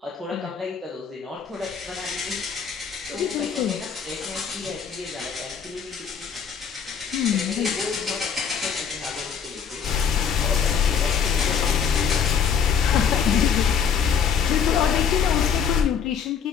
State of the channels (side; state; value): right; quieter; 7.1 dB